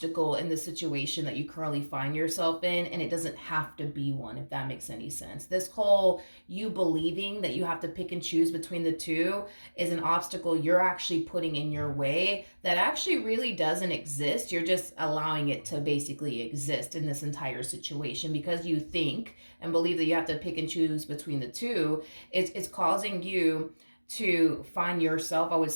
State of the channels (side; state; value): both; inverted; correlation -1.00